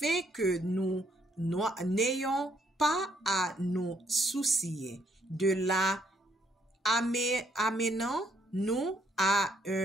que nous n'ayons pas à nous soucier de la amenant nous à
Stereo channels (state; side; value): normal; both; correlation 0.70